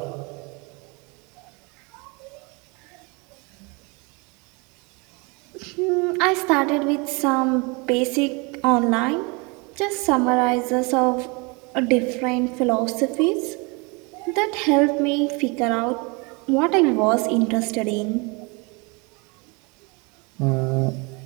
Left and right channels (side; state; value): left; quieter; 29.6 dB